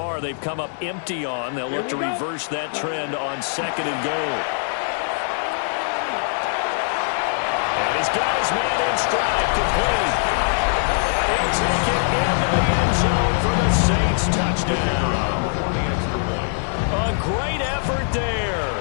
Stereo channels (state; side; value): silent; right; digital silence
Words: they've come up empty on. They'll look to reverse that trend on second and goal. And he's got his man in stride, complete. And he'll take it into the end zone for the Saints touchdown. A great effort there.